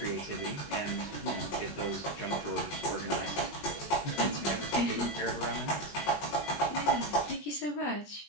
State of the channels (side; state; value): right; late; 21 ms